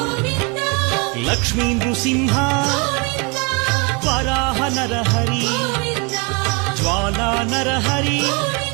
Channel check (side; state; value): left; quieter; 30.5 dB